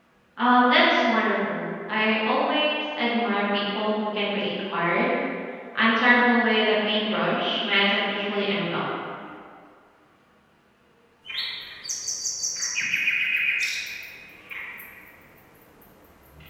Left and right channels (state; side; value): identical; both; correlation 1.00